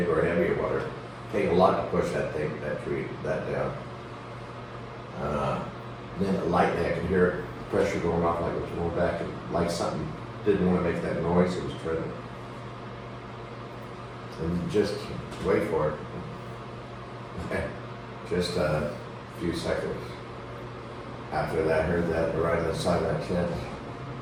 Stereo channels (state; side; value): identical; both; correlation 1.00